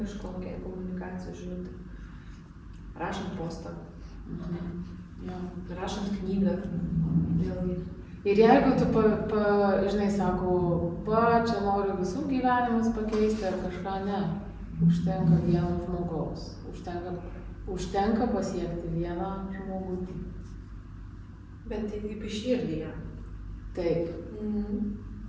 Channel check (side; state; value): both; identical; correlation 1.00